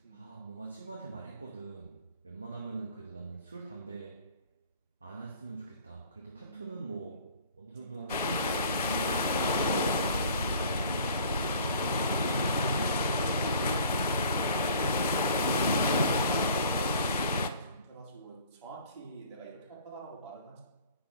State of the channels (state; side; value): inverted; both; correlation -0.50